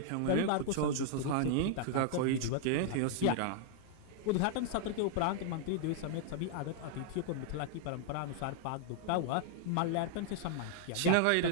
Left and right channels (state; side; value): different; both; correlation -0.01